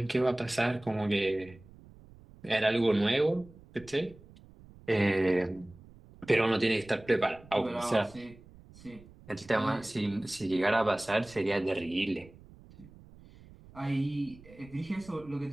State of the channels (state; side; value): noise; right; rumble, 22 dB below the sound